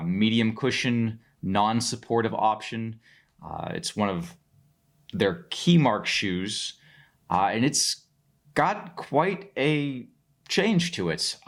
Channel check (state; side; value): identical; both; correlation 1.00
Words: medium cushion, non-supportive option. It's one of their key mark shoes, and it's got quite a change to it.